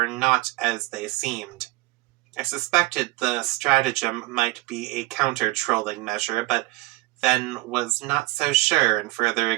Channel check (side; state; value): left; quieter; 21.4 dB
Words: not as they seemed. I suspected the stratagem might be a counter-trolling measure, but then was not so sure, and further